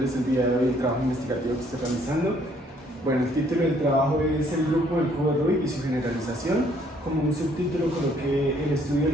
el día de hoy el trabajo investigativo que estoy realizando. Bueno, el título del trabajo es el grupo del cubo de Rubik y su generalización. Como un subtítulo coloqué el estudio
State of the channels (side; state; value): both; normal; correlation 0.65